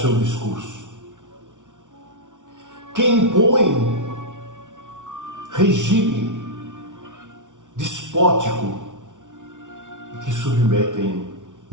discurso. Que impõe regime despótico e que submetem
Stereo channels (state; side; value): late; left; 0.87 ms